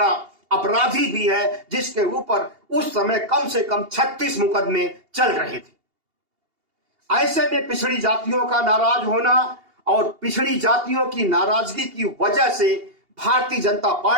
अपराधी भी है, जिसके ऊपर उस समय कम से कम 36 मुकदमे चल रहे थे। ऐसे में पिछड़ी जातियों का नाराज होना और पिछड़ी जातियों की नाराजगी की वजह से भारतीय जनता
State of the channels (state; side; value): late; left; 2.8 ms